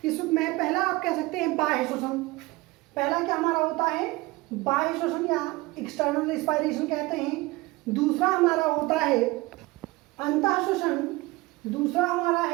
इसमें पहला आप कह सकते हैं बाह्य श्वसन। पहला क्या हमारा होता है बाह्य श्वसन या एक्सटर्नल रिस्पायरेशन कहते हैं। दूसरा हमारा होता है अंतः श्वसन, दूसरा हमारा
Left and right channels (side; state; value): left; quieter; 21.5 dB